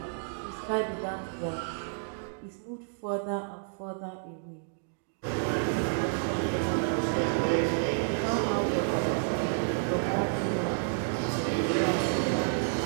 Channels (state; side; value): silent; left; digital silence